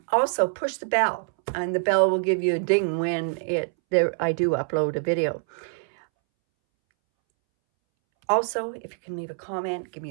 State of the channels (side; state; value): left; silent; 62 dB below the other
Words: also push the bell, and the bell will give you a ding when I do upload a video. Also, if you can leave a comment, give me